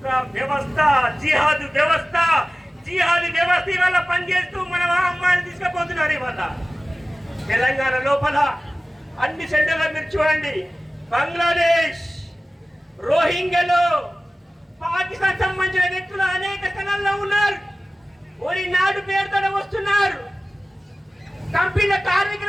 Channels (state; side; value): normal; both; correlation 0.97